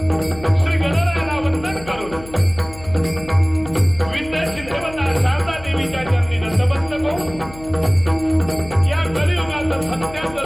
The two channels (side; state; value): left; noise; hum, 17 dB below the sound